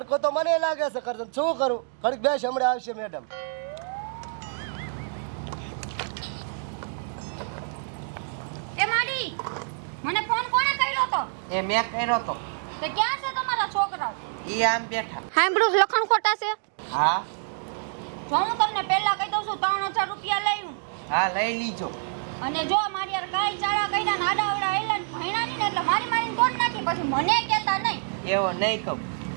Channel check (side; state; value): left; silent; digital silence